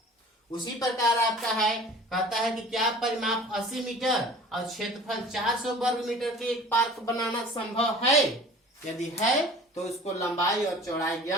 उसी प्रकार आपका है, कहता है कि क्या परिमाप 80 मीटर और क्षेत्रफल 400 वर्ग मीटर के एक पार्क बनाना संभव है, यदि है तो उसको लंबाई और चौड़ाई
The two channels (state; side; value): normal; both; correlation 0.44